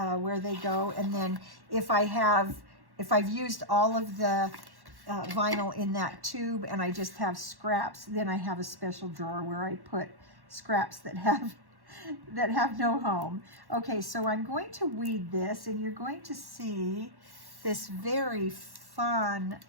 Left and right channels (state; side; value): late; left; 1.1 ms